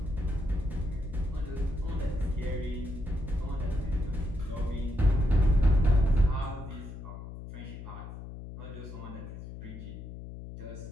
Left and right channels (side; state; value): left; noise; hum, 11 dB below the sound